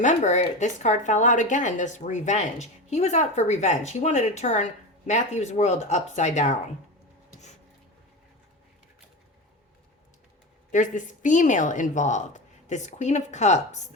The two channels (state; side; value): normal; both; correlation 0.24